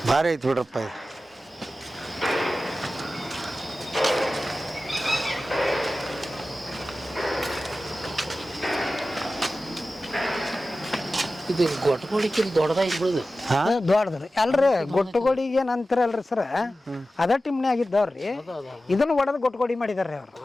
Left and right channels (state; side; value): normal; both; correlation 0.94